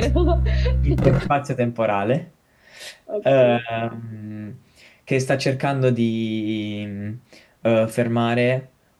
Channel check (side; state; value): both; identical; correlation 1.00